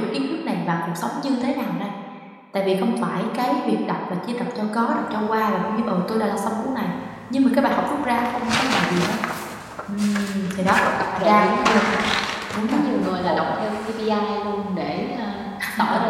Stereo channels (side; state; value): both; identical; correlation 1.00